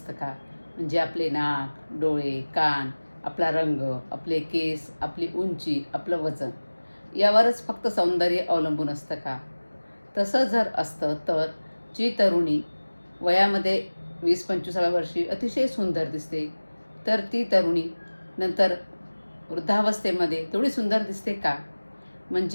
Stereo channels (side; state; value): both; inverted; correlation -1.00